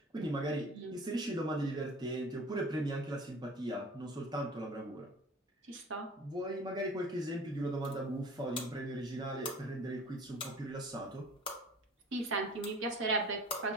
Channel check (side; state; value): both; normal; correlation 0.44